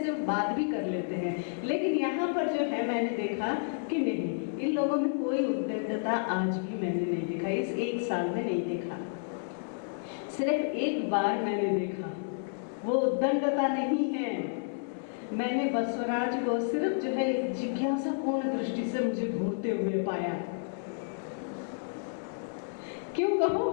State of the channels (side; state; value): right; silent; 57 dB below the other